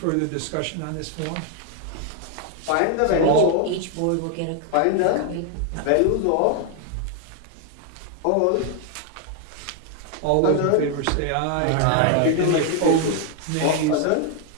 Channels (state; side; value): different; both; correlation 0.00